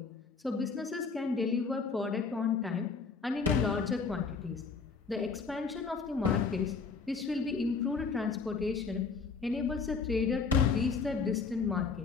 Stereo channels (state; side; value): quieter; right; 5.0 dB